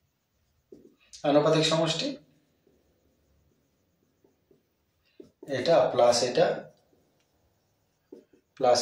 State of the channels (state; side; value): identical; both; correlation 1.00